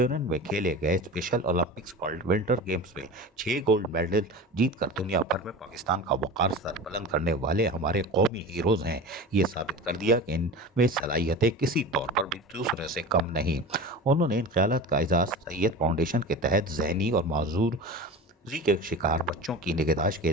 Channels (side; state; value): both; normal; correlation 0.32